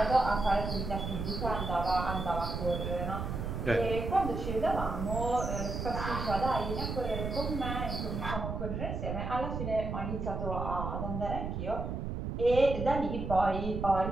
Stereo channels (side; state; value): right; noise; rumble, 4 dB below the sound